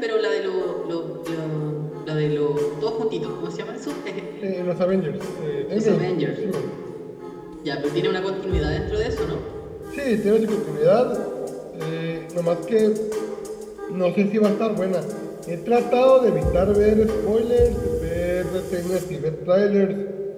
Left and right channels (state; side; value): identical; both; correlation 1.00